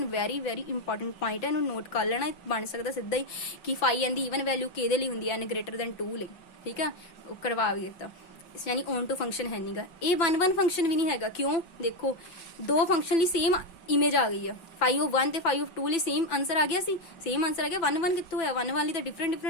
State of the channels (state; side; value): late; right; 6.0 ms